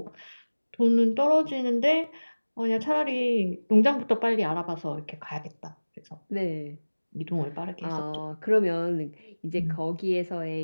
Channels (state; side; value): inverted; both; correlation -1.00